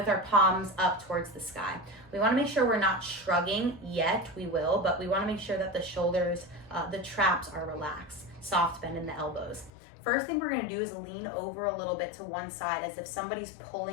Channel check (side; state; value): right; drops out; at 9.7 s